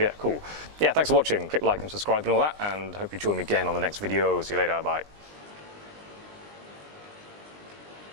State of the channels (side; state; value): left; late; 20 ms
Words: cool. Yeah, thanks for watching. Click like and subscribe and all that, and hope you join me again on the next video. See you later, bye.